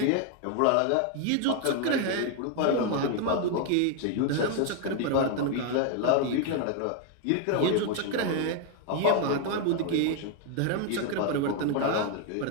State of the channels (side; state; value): both; different; correlation 0.01